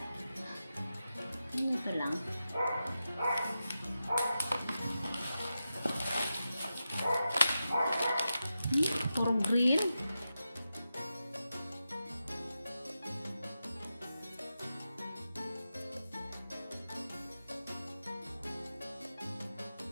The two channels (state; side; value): inverted; both; correlation -0.90